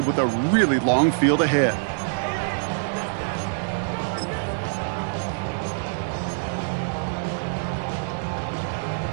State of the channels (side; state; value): left; silent; 62 dB below the other